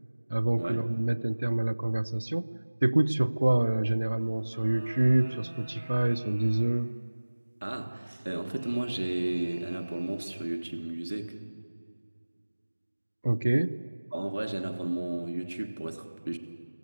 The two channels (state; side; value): inverted; both; correlation -1.00